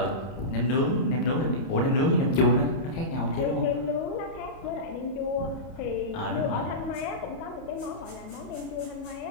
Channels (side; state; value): right; late; 30 ms